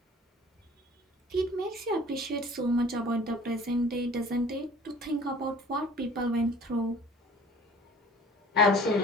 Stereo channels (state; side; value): normal; both; correlation 0.48